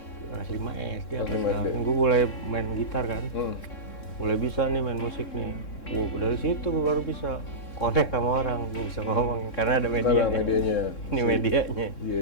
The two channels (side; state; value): right; late; 3.7 ms